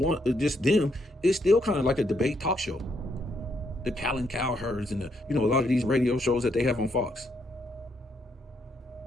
just them, it's still kind of like a debate talk show. The Callan Cowherds and the, you know, a lot of these radio shows that they have on Fox.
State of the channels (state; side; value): normal; both; correlation 0.75